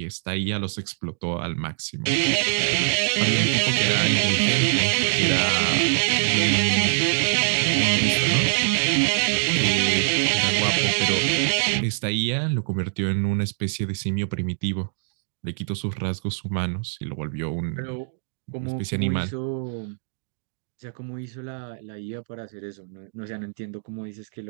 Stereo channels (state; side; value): silent; left; digital silence